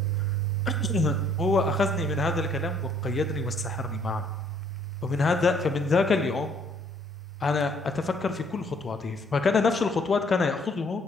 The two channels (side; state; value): both; normal; correlation 0.63